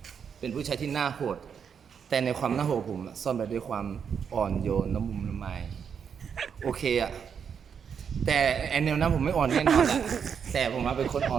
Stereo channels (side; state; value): left; quieter; 7.1 dB